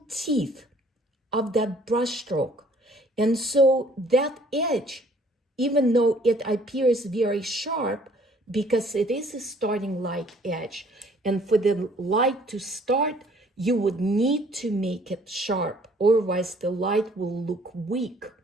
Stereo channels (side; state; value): both; normal; correlation 0.58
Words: teeth of that brush stroke. And so that edge, even though it appears very sharp, because it is a starting light edge, and for the light to start, you would need to make it sharp, otherwise the light will look weak.